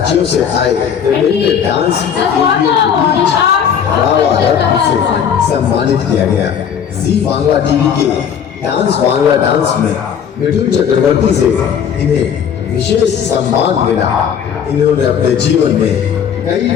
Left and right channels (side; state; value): right; quieter; 8.0 dB